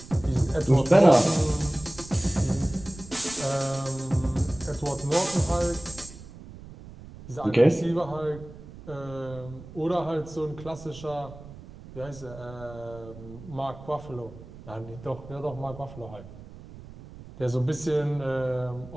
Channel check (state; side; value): noise; right; rumble, 16 dB below the sound